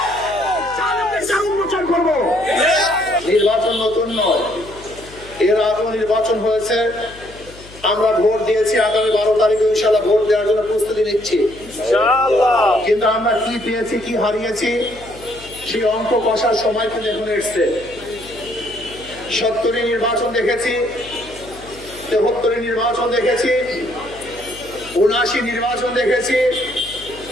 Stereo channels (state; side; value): noise; left; hum, 20 dB below the sound